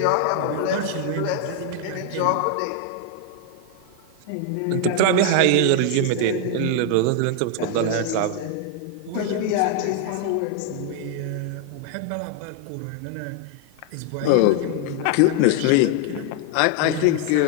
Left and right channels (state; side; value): different; both; correlation 0.00